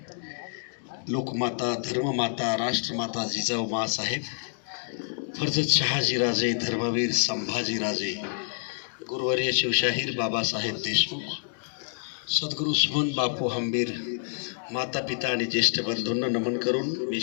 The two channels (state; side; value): silent; right; digital silence